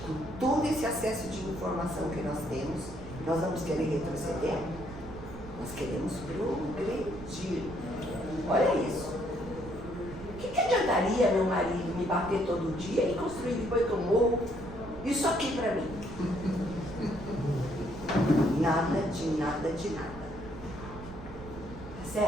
com todo esse acesso de informação que nós temos, nós vamos querer retroceder? Nós queremos progredir. Olha isso. O que adiantaria meu marido me bater todo dia e construir depois que eu morro isso aqui para mim? Nada de nada de nada. Tá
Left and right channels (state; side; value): noise; right; rumble, 13 dB below the sound